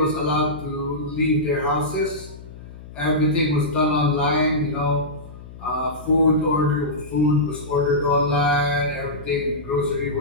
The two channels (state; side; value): noise; left; hum, 16 dB below the sound